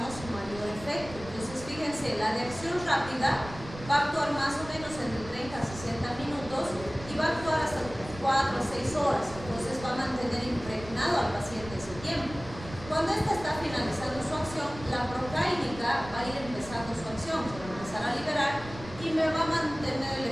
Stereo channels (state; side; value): noise; right; rumble, 14 dB below the sound